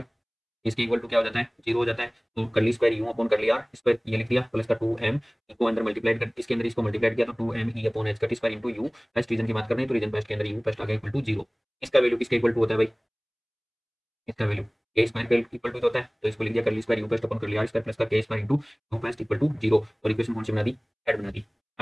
इसके इक्वल टू क्या हो जाता है, जीरो हो जाता है। तो curly square u upon curly r square ये लिख दिया प्लस का 2m को अंदर मल्टीप्लाई कर, इसके अंदर इसको मल्टीप्लाई किया तो 2m e अपॉन h का square into u। First region की बात कर रहे हैं तो रीजन फर्स्ट के अंदर u फर्स्ट आ गया इक्वल टू जीरो। इसका वैल्यू किसके इक्वल टू होता है भाई, इसका वैल्यू के स्क्वायर के इक्वल टू होता है। तो इसको लिख दिया curly square u first upon curly r square plus का k square into u first equal to zero. और इक्वेशन कौन सी बना दी, ऐड बना दी।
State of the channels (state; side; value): identical; both; correlation 1.00